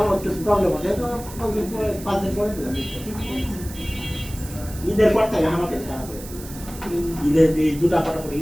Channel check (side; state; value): right; noise; hiss, 15 dB below the sound